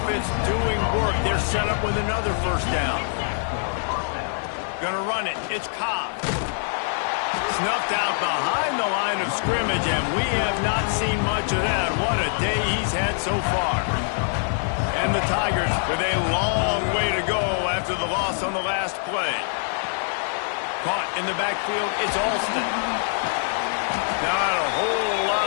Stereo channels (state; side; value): silent; right; 62 dB below the other